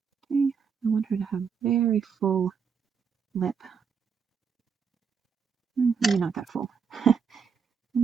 Okay, I want her to have very full lip. Maybe not that full.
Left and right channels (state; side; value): quieter; left; 6.3 dB